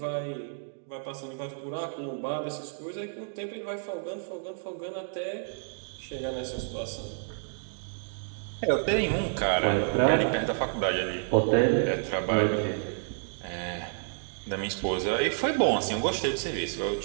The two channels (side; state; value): left; silent; digital silence